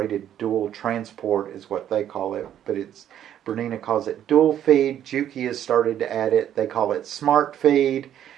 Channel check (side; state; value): left; quieter; 10.6 dB